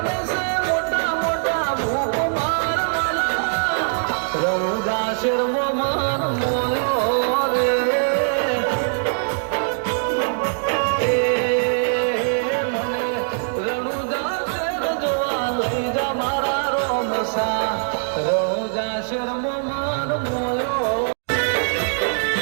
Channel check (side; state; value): left; silent; digital silence